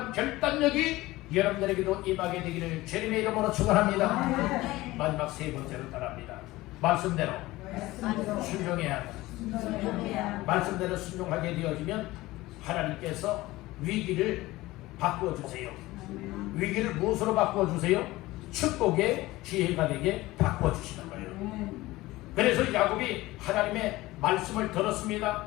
결단력이 여러분들에게도 임하게 되기를 주님의 이름으로 축원합니다. 마지막 세 번째로 따라합니다. 말씀대로 순종해야 합니다. 말씀대로 순종하게 되어지면 하나님께서 위기를 바꿔주세요. 위기를 무엇으로 바꿔주세요? 축복의 기회가 되게 바꿔주시는 거예요. 그래서 야곱이 하나님의 말씀을 들었습니다.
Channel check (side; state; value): right; quieter; 18.7 dB